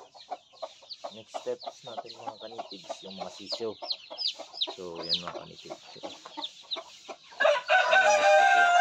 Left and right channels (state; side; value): identical; both; correlation 1.00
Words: Next steps natin mga kanitib is yung masisyo. So yan mga kanitib. So,